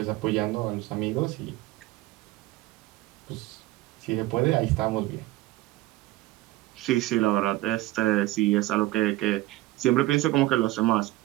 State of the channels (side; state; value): left; quieter; 17.6 dB